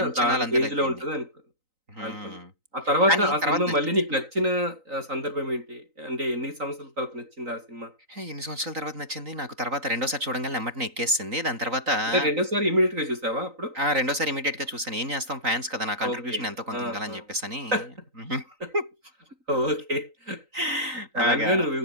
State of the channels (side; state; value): left; late; 3.9 ms